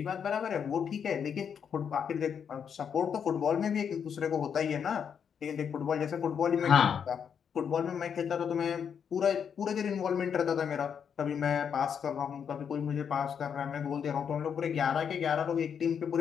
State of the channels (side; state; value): right; quieter; 7.4 dB